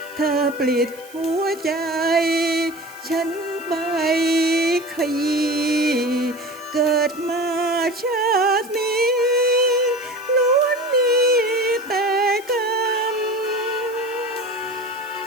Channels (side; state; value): right; noise; hiss, 22 dB below the sound